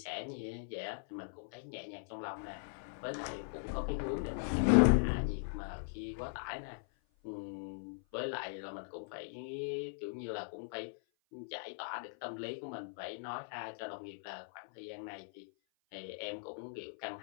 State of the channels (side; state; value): right; silent; 51 dB below the other